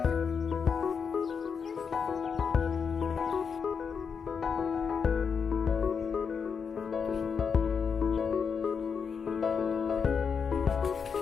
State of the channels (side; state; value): right; quieter; 6.2 dB